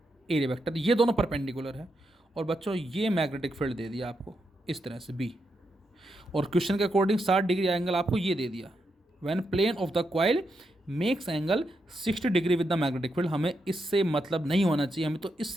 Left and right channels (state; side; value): normal; both; correlation 0.83